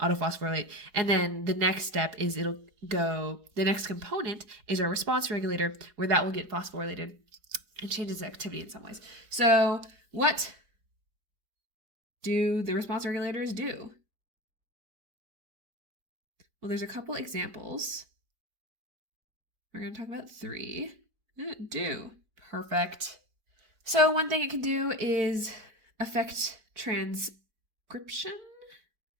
and then the next step is the next component is our response regulator, where that will get phosphorylated and changes activity in some ways. So what do the response regulators do? Well, there's a couple examples. We're going to talk about three. Do. Perfect. So one thing it can do is affect transcription.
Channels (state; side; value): late; left; 4.8 ms